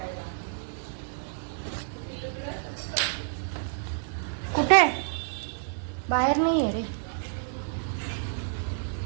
कुठे? बाहेर नाही आहे रे.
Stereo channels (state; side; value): silent; left; digital silence